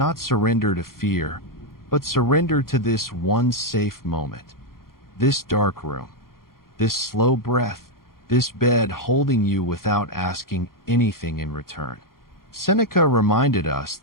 surrender to fear, but surrender to this one safe moment. This dark room, this slow breath, this bed holding you without asking anything in return. Seneca reminded us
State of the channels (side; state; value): right; late; 0.92 ms